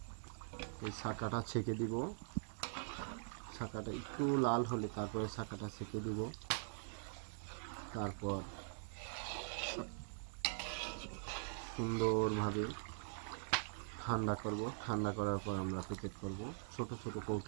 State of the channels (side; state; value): left; silent; digital silence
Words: এই ছাকাটা ছেঁকে দিব। ছাকাটা একটু লাল হলে তারপরে ছাকাটা ছেঁকে দিব। তারপর সুন্দরভাবে ঠান্ডা করব। ঠান্ডা করার পর আমরা প্যাকেট করব ছোট ছোট